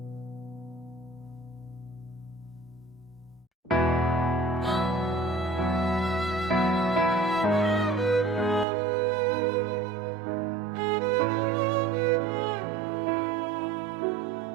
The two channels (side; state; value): left; drops out; at 8.7 s